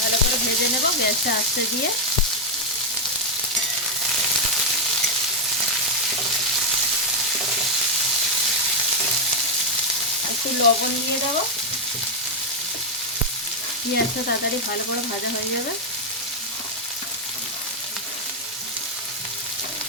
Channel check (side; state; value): both; normal; correlation 0.01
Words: करे भेजे नेब गैसटा आस्ते दिए। एकटु लवण दिए देब। पेंयाजटा ताड़ाताड़ी भालो करे भाजा हये जाबे।